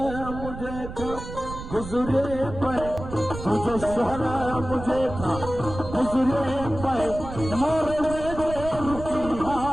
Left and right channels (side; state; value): right; noise; rumble, 10 dB below the sound